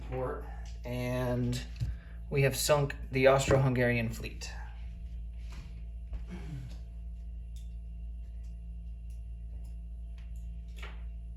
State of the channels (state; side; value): identical; both; correlation 1.00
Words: port. And we have sunk the Austro-Hungarian fleet.